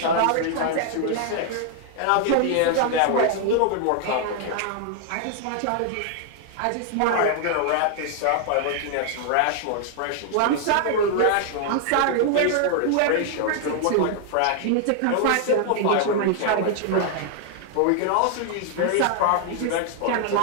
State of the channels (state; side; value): different; both; correlation 0.00